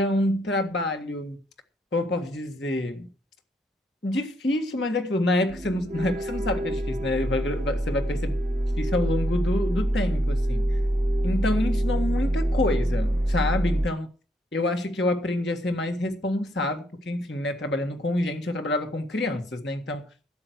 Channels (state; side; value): normal; both; correlation 0.75